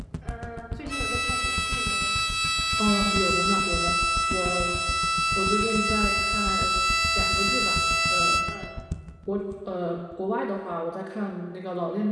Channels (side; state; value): both; identical; correlation 1.00